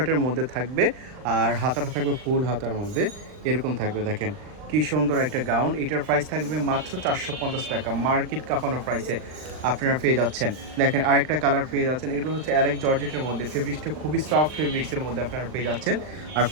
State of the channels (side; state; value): left; late; 39 ms